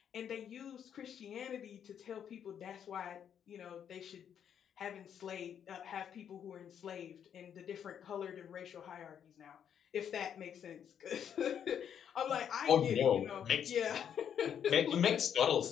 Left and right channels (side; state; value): right; quieter; 8.7 dB